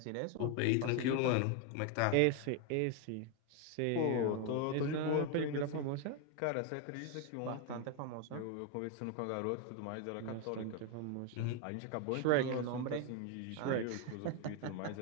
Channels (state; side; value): different; both; correlation 0.01